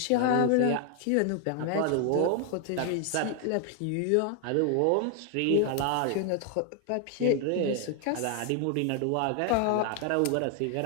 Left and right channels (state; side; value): different; both; correlation 0.00